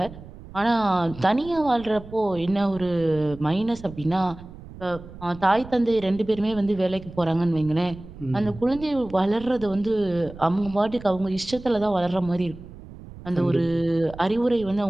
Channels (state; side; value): noise; right; rumble, 16 dB below the sound